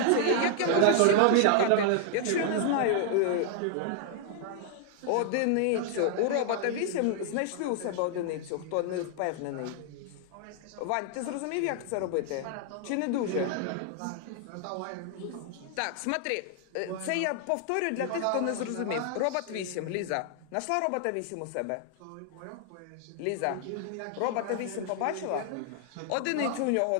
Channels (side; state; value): both; different; correlation 0.00